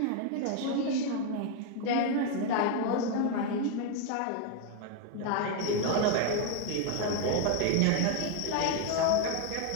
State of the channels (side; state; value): both; different; correlation 0.01